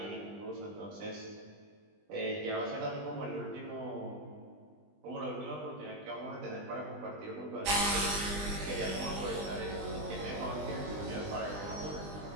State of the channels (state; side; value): late; left; 20 ms